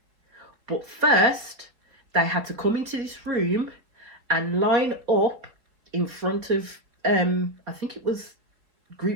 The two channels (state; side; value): late; left; 4.2 ms